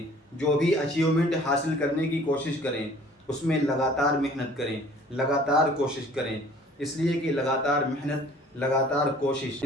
جو بھی اچیومنٹ حاصل کرنے کی کوشش کریں، اس میں لگاتار محنت کریں، لگاتار کوشش کریں، اس لیے کہ لگاتار محنت، لگاتار کوشش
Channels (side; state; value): both; normal; correlation 0.52